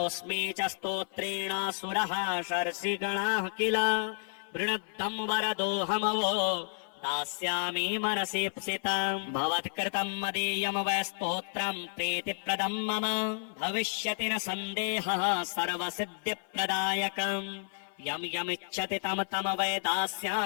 च स्तोत्रेण सुरः शर्षिगणाः किल वृणद्धं वरदोऽहमवो दास्यामि मनसीप्सितम् भवत्कृतं मदीयं वै स्तोत्रं प्रीतिप्रदं मम भविष्यति न सन्देहः सर्वसिद्धिप्रदायकम् यं यमिच्छति तं तं वै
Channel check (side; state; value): right; silent; 57 dB below the other